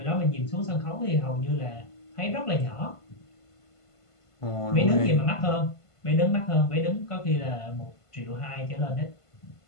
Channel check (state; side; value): late; right; 1.5 ms